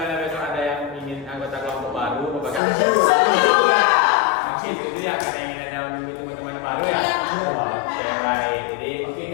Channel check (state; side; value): drops out; right; at 2.6 s